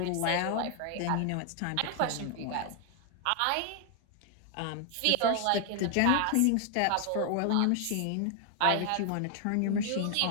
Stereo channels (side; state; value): both; different; correlation 0.00